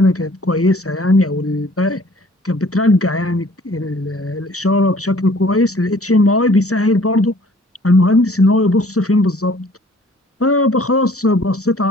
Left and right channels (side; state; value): both; normal; correlation 0.54